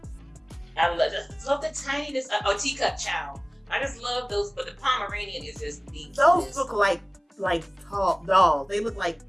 I love the tinyness. Teacup chow. I just love those, but the Pomeranian is just the. Those look like tall dolls. They look like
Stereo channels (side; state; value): both; identical; correlation 1.00